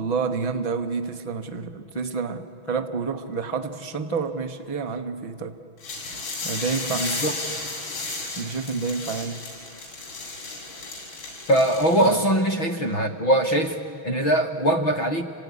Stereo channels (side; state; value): right; late; 6.1 ms